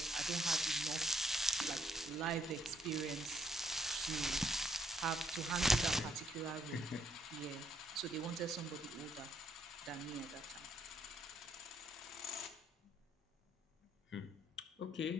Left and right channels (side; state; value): both; normal; correlation 0.70